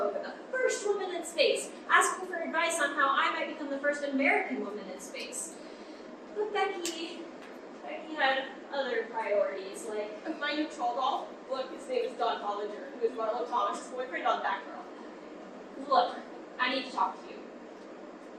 the first woman in space, asking for advice on how I might become the first American woman in space. But Becky had other priorities, like, My new troll doll? Look, his name is Don Hollinger, who is Marlo Thomas' boyfriend on Batgirl. look, I need to talk to you.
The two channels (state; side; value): identical; both; correlation 1.00